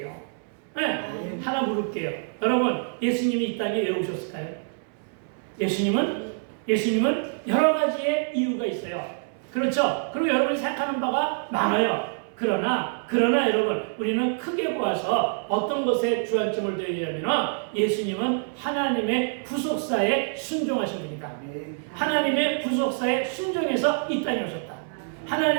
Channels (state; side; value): silent; left; 61 dB below the other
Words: 하나 물을게요. 여러분, 예수님이 이 땅에 왜 오셨을까요? 예수님은 여러 가지의 이유가 있어요. 그렇죠? 그리고 여러분이 생각하는 바가 많아요. 그러나 여러분, 우리는 크게 보아서 어떤 것에 주안점을 둬야 되냐면 예수님은 하나님의 구속사에 순종하신 분이다. 하나님의 구속사에 순종해서 이 땅에 오셨다.